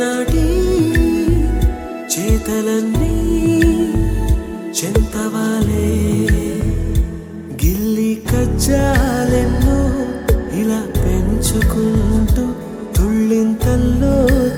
చేతలన్నీ చెంతవాలే గిల్లి కజ్జాలెన్నో ఇలా పెంచుకుంటూ తుళ్ళింతల్లో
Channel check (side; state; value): both; identical; correlation 1.00